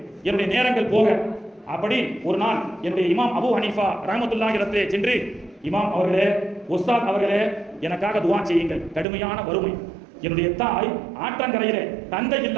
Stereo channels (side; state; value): left; drops out; at 9.1 s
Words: என்னுடைய நேரங்கள் போக. அப்படி ஒரு நாள் என்னுடைய இமாம் அபு ஹனீஃபா ரஹ்மத்துல்லாஹி அலைஹிரத்திலே சென்று, இமாம் அவர்களே, உஸ்தாத் அவர்களே, எனக்காக துஆ செய்யுங்கள், கடுமையான வறுமை. என்னுடைய தாய் ஆற்றங்கரையிலே தந்தை